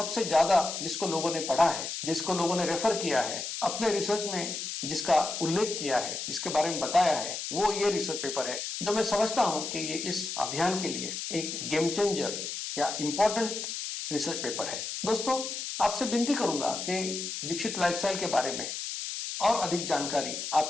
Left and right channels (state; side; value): noise; left; hiss, 5 dB below the sound